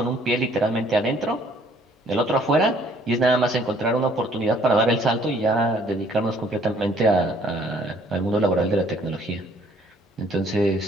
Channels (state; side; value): normal; both; correlation 0.61